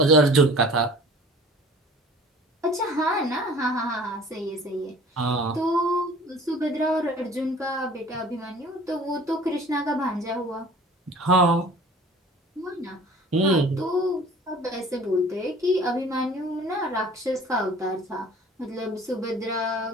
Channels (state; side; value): normal; both; correlation 0.47